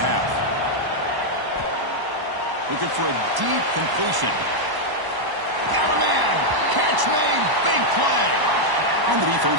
half. Looking for a deep completion. Got a man! Catch catch made. Big play. And the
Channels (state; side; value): late; left; 1.0 ms